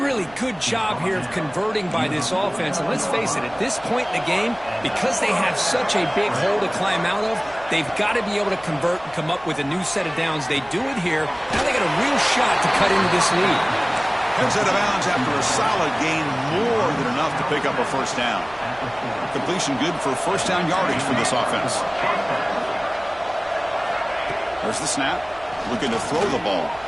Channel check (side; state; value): right; noise; rumble, 24 dB below the sound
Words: good job here of converting by this offense. And let's face it, at this point in the game, because they have such a big hole to climb out of, they've got to be able to convert and come up with a new set of downs. They do it here. Now they got a real shot to cut into this lead. Heads out of bounds after a solid gain, more than enough to pick up a first down. Completion good for first down yardage for this offense. There's the snap. Looking to throw the ball.